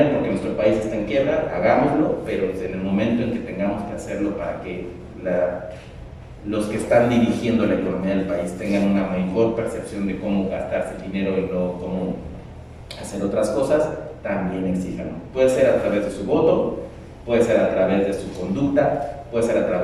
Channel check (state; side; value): identical; both; correlation 1.00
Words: porque nuestro país está en quiebra, hagámoslo, pero en el momento en que tengamos que hacerlo para que los que están dirigiendo la economía del país tengan una mejor percepción de cómo gastarse el dinero y no cómo hacer otras cosas, también exíjanlo. Puede ser a través de su voto, puede ser a través de su conducta, puede ser a